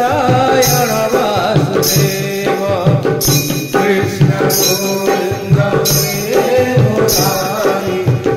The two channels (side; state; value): both; identical; correlation 1.00